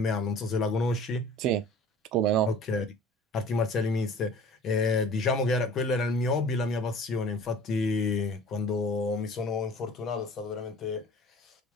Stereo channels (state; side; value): normal; both; correlation 0.46